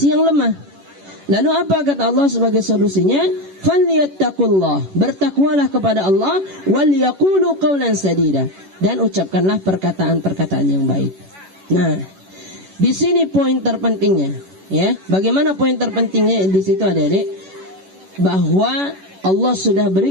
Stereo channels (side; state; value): left; late; 11 ms